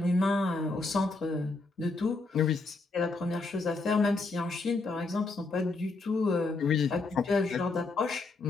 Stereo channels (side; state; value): right; quieter; 3.5 dB